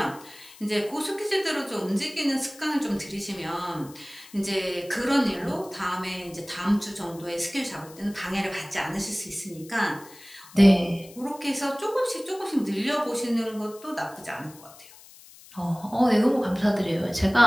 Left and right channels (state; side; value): noise; left; hiss, 21 dB below the sound